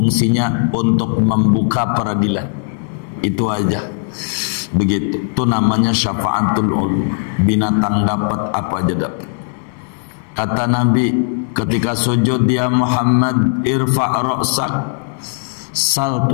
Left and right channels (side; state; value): right; silent; 68 dB below the other